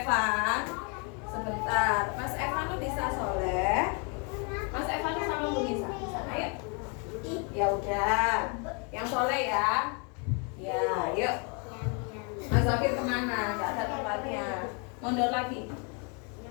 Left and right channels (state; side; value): quieter; right; 34.8 dB